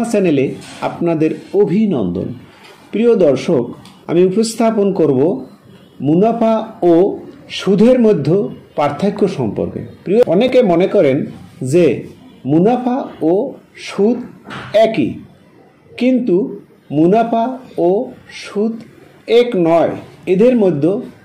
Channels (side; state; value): both; identical; correlation 1.00